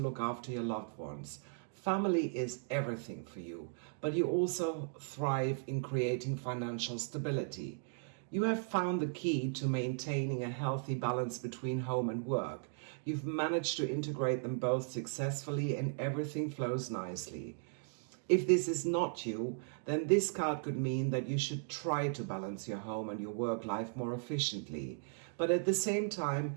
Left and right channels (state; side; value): silent; left; digital silence